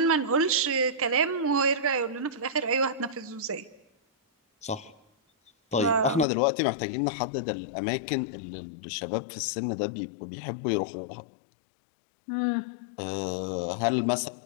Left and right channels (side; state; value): right; drops out; at 6.2 s